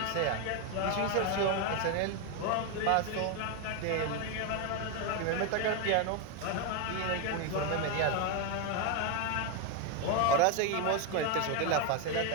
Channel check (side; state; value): both; different; correlation 0.01